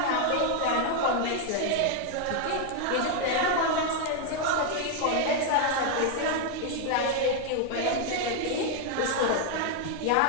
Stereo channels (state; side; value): different; both; correlation 0.00